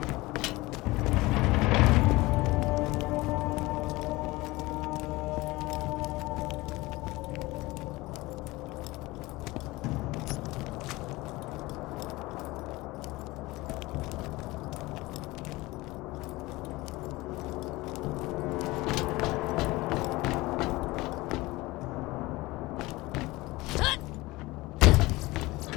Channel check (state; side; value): quieter; right; 20.8 dB